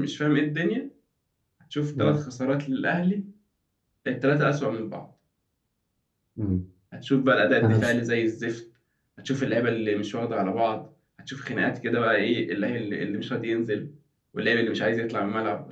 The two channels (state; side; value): identical; both; correlation 1.00